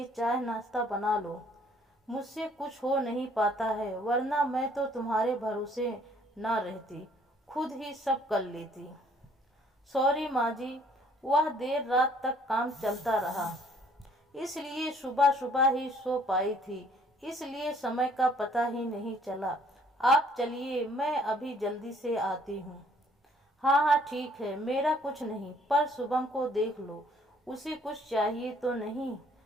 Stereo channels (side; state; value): both; normal; correlation 0.61